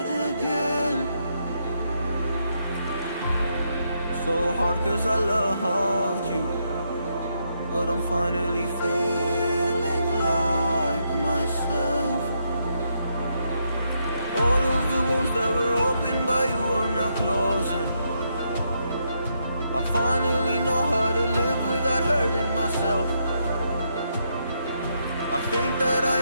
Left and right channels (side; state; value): both; inverted; correlation -0.78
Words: again. So hard cause I loved you, but I'm finally feeling like myself. All of the wounds that were opened by you are now closing. I finally know how to live without hurting myself. I think that I